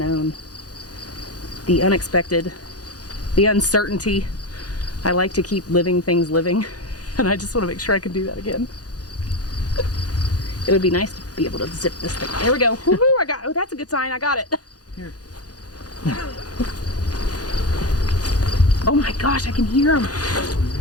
the unexpected, the uncertainty. I like to keep living things living, and I just want to make sure I can do that again. It would be nice to be able to zip this thing. There we go. Woohoo! I got. Oh, that's a good sign. I got it. Here. Oh my gosh, I can hear them.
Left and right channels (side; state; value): right; late; 0.68 ms